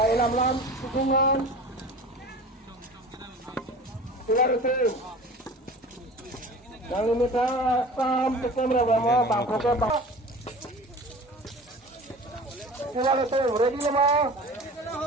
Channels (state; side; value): normal; both; correlation 0.39